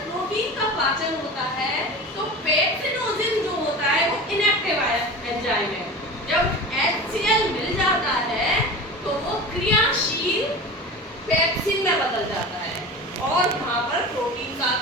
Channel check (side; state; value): both; normal; correlation 0.33